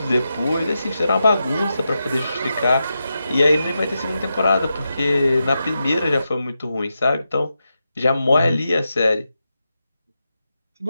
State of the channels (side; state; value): both; inverted; correlation -0.88